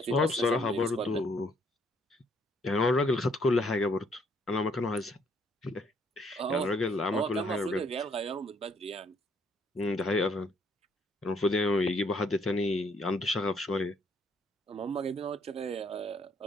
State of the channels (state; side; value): normal; both; correlation 0.67